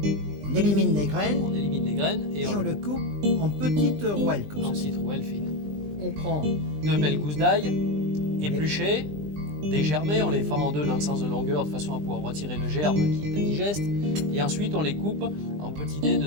on élimine les graines On élimine les graines et et on on le coupe en petites rouelles comme en ça. petite rouelle fine. On prend 2 belles gousses d'ail, épluchées, dégermées, on les fend en deux dans le sens de longueur de façon à pouvoir retirer le germe qui est indigeste. Et ensuite on les coupe en petits dés de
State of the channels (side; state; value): left; late; 20 ms